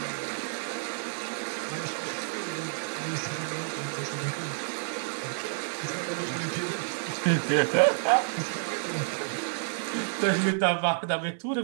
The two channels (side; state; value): left; silent; 58 dB below the other